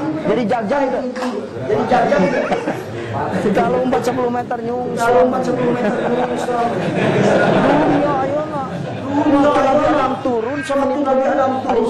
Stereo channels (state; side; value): identical; both; correlation 1.00